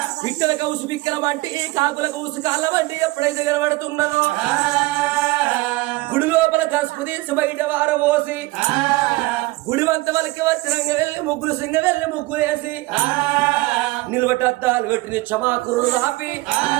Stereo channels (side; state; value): left; quieter; 20.9 dB